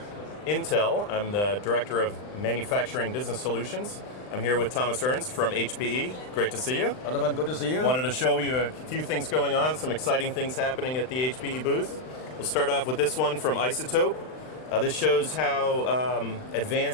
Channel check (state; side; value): late; right; 39 ms